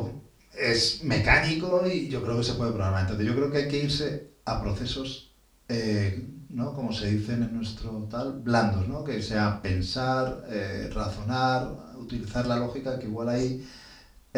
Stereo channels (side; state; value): both; identical; correlation 1.00